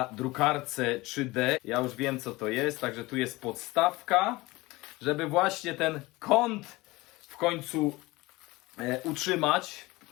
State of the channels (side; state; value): right; quieter; 21.2 dB